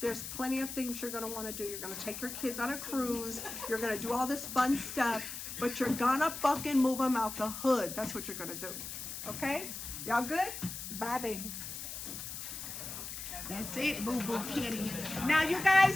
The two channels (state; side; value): noise; left; hiss, 8 dB below the sound